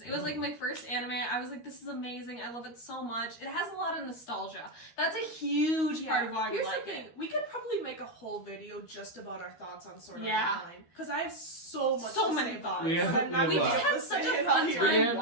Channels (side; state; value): right; late; 13 ms